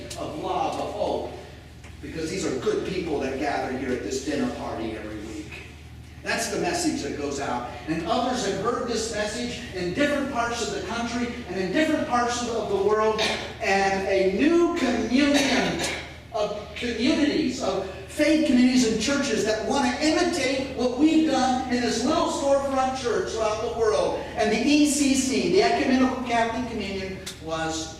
of love, of hope. Because these are good people that gather here at this dinner party every week. That's the message that goes out. And others have heard this message in different parts of the country and in different parts of the world. And a new communion of communities, of faith communities and churches that want to imitate what we've done in this little storefront church throughout the world. And the ECC, the Ecumenical Catholic Communion, was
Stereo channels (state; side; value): identical; both; correlation 1.00